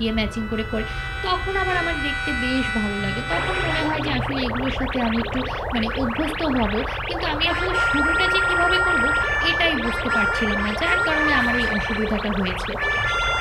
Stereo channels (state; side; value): identical; both; correlation 1.00